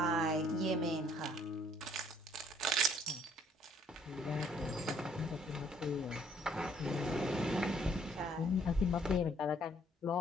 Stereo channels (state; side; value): normal; both; correlation 0.63